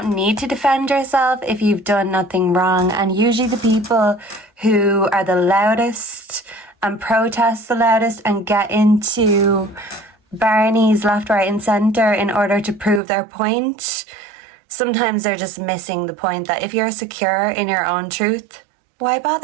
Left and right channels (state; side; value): drops out; left; at 13.0 s